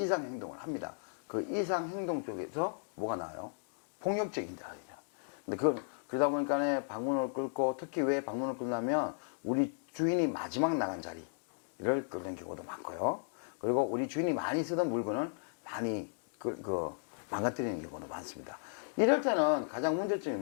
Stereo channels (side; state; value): right; silent; digital silence